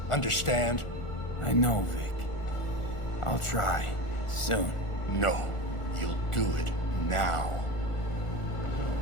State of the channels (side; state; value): right; late; 1.4 ms